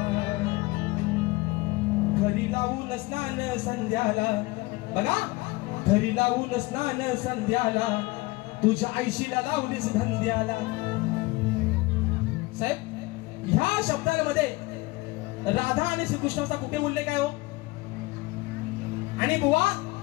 घरी लावून स्नान संध्याला, बघा घरी लावून स्नान संध्याला, तुझ्या आईशीला लावलीस धंद्याला. साहेब ह्या शब्दांमध्ये राधा आणि श्रीकृष्णाचा कुठे उल्लेख आहे हो? आणि बुवा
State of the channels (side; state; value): right; quieter; 22.0 dB